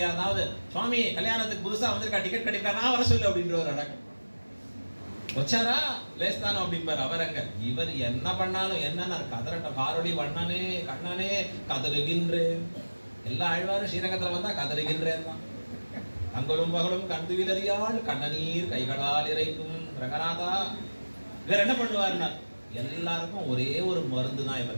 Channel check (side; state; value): both; inverted; correlation -1.00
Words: சுவாமி கல்யாணத்துக்கு புதுசாக வந்திருக்கா, டிக்கெட் கிடைக்கா, நான் வர சொல்லு அப்படின்ற ஒரு அடக்கம் வச்சாரா லேஸ்தானோ அப்படிம்பார். அவர் அங்க இவர் என்ன பண்ணாலும் என்னன்னா கதறட்டம், காரொளி வண்ணனே கண்ணனே கதறுகின்றேன். எல்லா ஆழ்வாரும் ஸ்ரீரங்கத்தில் வந்தா கதறுகின்றேன் தான். அங்கலும் பகலும் கண்டு விலறியால் கண்ணநீர் கைகளால் இறைக்கும் ரங்கநாதா. இவர் என்ன பண்ணுவார்னா, எல்லாருக்கும் ஒரே ஒரு மருந்து தான்